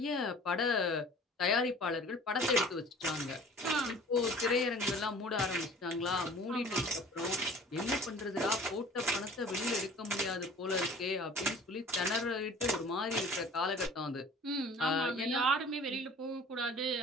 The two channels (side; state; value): both; normal; correlation 0.47